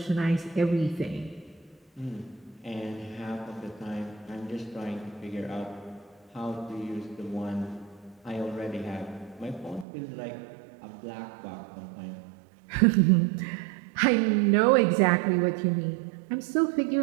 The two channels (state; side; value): drops out; left; at 9.9 s